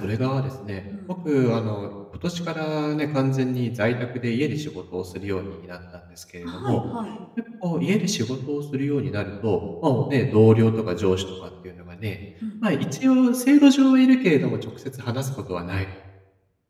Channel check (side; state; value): both; identical; correlation 1.00